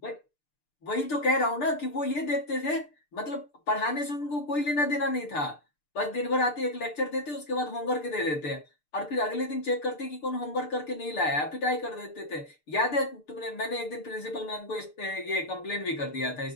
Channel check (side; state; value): right; late; 6.7 ms